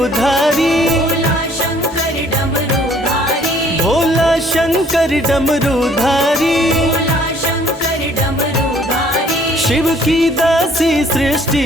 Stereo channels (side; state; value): both; normal; correlation 0.59